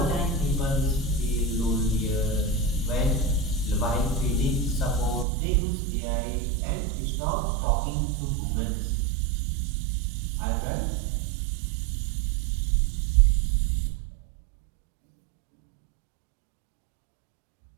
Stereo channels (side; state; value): left; drops out; at 5.2 s